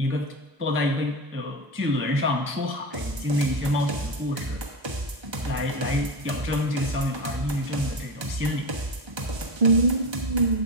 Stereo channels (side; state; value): left; late; 1.3 ms